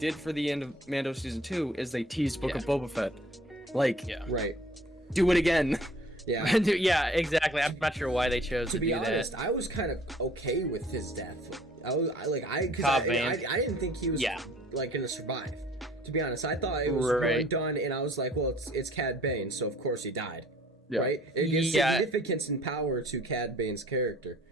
for the end of Mando season 2, is they teased Book of Boba Fett. Like, do it again. Yeah. Yeah, exactly. I'm not sure why they chose to do that. To be honest, I was kind of okay with his death. I didn't think he was like gonna survive. To be honest, I thought it was going done, and I was like, well, it's Cad Bane, so of course he died. Yeah. Right? It gives significance and power to Cad Bane's character.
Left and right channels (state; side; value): normal; both; correlation 0.54